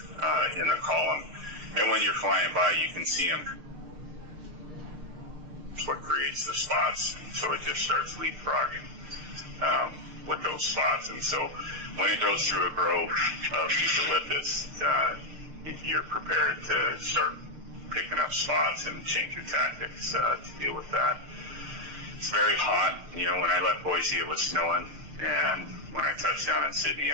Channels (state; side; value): late; left; 6.6 ms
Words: in a column. And when you're flying by, you can see them. It's what creates the spots. So it just starts leapfrogging with those spots. And so when it goes through a grove of eucalyptus, you're prepared to start picking up spots and change your tactics to deal with that. It's very hot. When I left Boise, it was snowing, and when I touched down in Sydney,